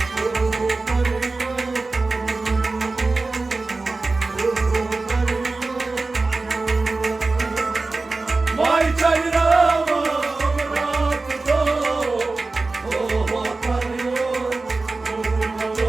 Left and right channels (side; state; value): left; quieter; 3.6 dB